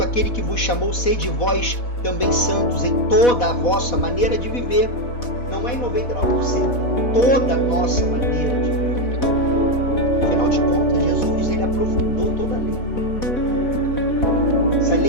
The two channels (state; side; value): late; right; 4.1 ms